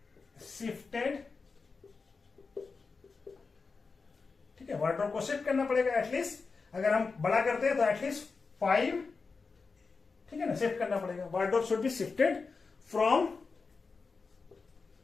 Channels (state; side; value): quieter; right; 4.5 dB